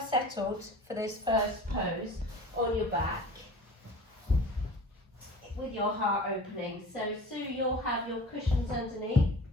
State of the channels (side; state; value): both; normal; correlation 0.40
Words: settled for this first pose on your back with your heart opening. So Sue, you'll have your cushions underneath